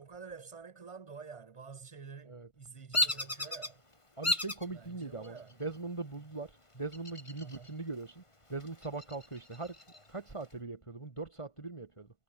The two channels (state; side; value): late; right; 1.5 ms